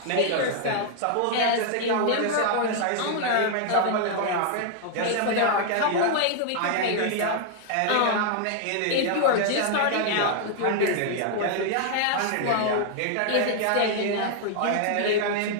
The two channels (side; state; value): both; different; correlation 0.00